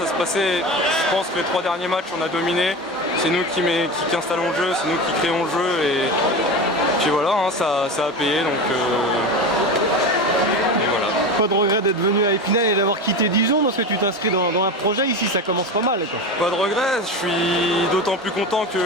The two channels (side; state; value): both; normal; correlation 0.25